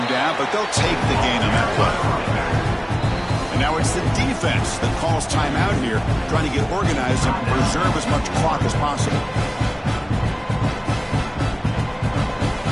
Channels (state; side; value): identical; both; correlation 1.00